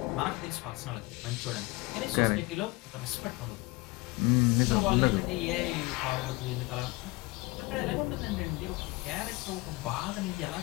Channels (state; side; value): quieter; right; 22.9 dB